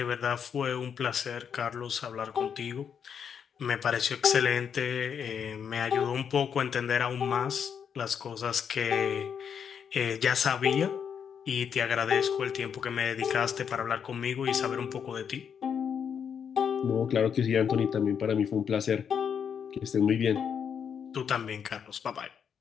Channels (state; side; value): quieter; right; 7.5 dB